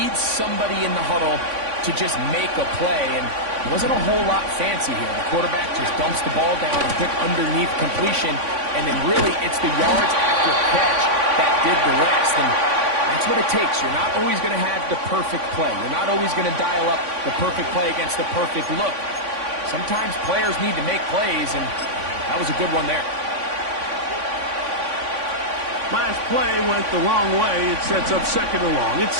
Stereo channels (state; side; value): late; left; 3.5 ms